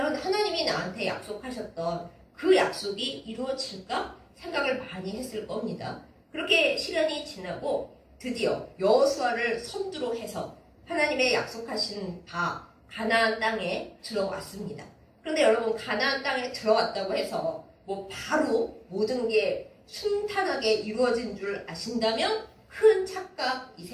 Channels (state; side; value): identical; both; correlation 1.00